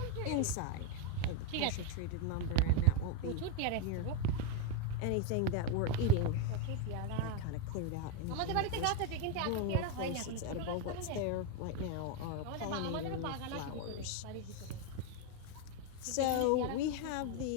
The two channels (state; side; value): different; both; correlation 0.02